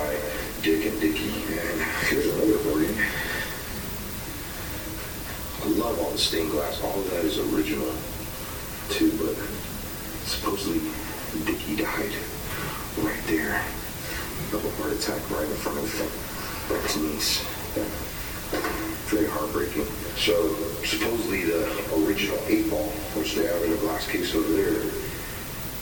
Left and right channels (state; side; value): identical; both; correlation 1.00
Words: Dick and Dickie. And here's another recording. I love all the stained glass. All of that is original too, but supposedly Dickie died right there of a heart attack right in front of his niece. Very heartbreaking. So supposedly the original 8-ball, which they have in a glass case over there,